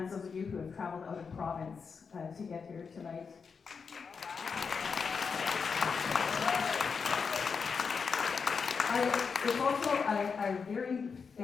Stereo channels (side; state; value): right; quieter; 5.6 dB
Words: those of you who have traveled out of province to get here tonight. It's also a very